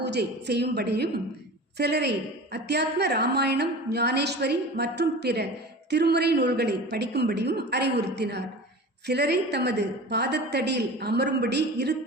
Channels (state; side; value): normal; both; correlation 0.35